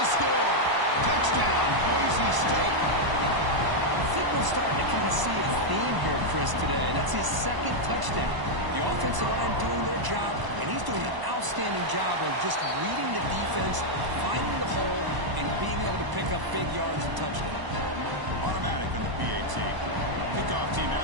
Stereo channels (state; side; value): late; left; 1.0 ms